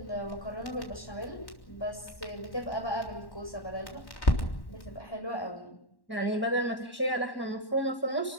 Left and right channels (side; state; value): right; late; 1.1 ms